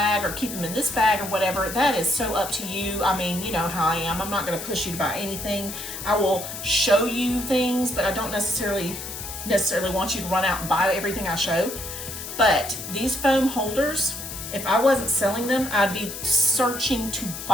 or keep them in this bag or whatever. That is so up to you. I mean, you know how I am. I'm not going to push you to buy anything. I will show you things, but I don't necessarily want you to run out and buy everything I show. But these foam holders, if I wasn't selling them, I'd be searching to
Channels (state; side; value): noise; left; hiss, 9 dB below the sound